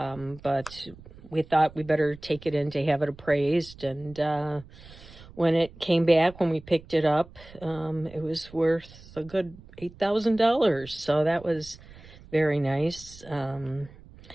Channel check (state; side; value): noise; right; rumble, 20 dB below the sound